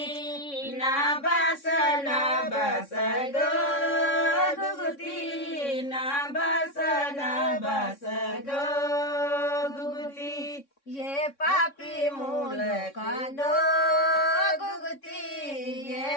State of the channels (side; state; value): right; late; 3.6 ms